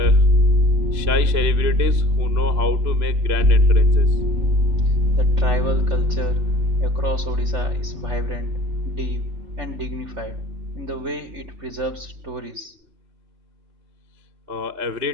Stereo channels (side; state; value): left; late; 3.0 ms